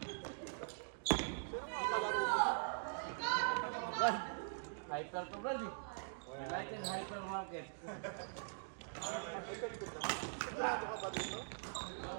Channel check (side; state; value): left; silent; digital silence